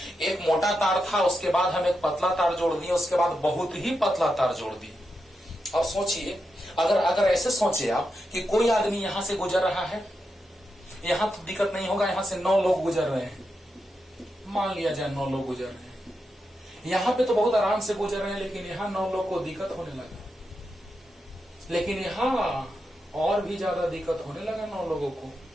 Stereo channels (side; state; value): both; normal; correlation 0.87